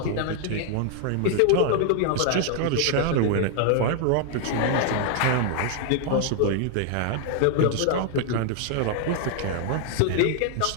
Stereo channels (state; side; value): different; both; correlation 0.00